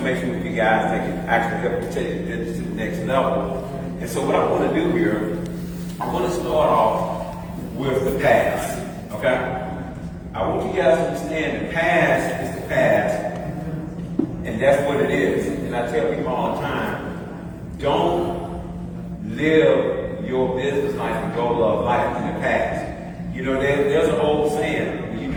with you guys that can actually help you take it to the next level. And so what I want to do here, I want to start off with the past, okay? I want you guys to understand the past is the past, and that's what it is. And I tell people all the time, don't live your business life and goal of life in the past. You know, there's an old saying, when you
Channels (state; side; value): identical; both; correlation 1.00